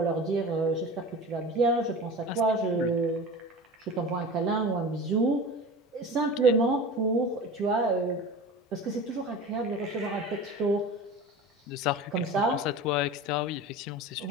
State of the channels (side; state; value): both; normal; correlation 0.34